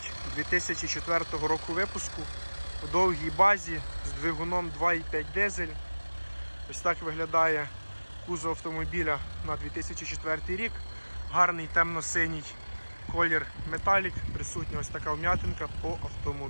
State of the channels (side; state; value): both; inverted; correlation -1.00